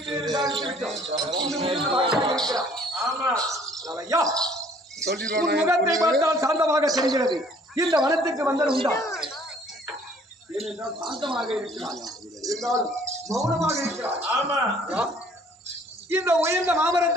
முகத்தை பார்த்தால் சாந்தமாக தெரிகிறது. இந்த வனத்துக்கு வந்தது உண்டா? ஏனென்றால் சாந்தமாக இருக்கிறார், இருந்தாலும் மௌனமாக இருக்கிறார். ஆமா, இந்த உயர்ந்த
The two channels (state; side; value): normal; both; correlation 0.57